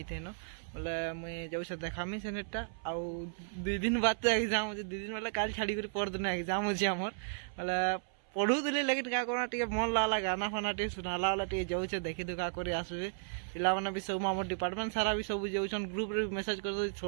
न बोले मुई जाउ से देखामी सेनेटा आ 2 दिन बाद तो एग्जाम होची। 2 दिन वाला काल छाड़ी कर पर दिन एग्जाम होची आमर बोले पढ़ू दिले लेकिन क्या करना टे मन लागला गाना फाना टे सुनाला वाला टे जाऊ देखी दुखा कर आसबे पिला माने भी सब आम डिपार्टमेंट सारा भी सब जाऊन ग्रुप रे मेसेज कर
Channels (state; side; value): silent; left; 55 dB below the other